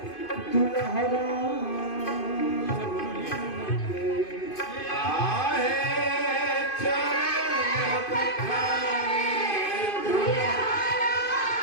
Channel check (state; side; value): late; right; 2.5 ms